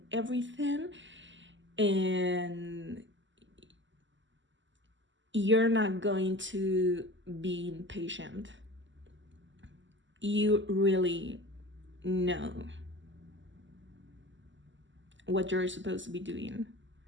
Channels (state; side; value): late; left; 0.54 ms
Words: everything. And you're not going to be impatient. You really know what you're supposed to be doing,